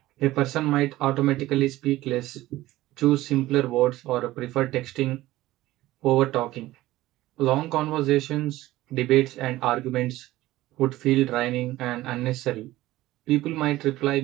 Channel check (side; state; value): left; quieter; 16.6 dB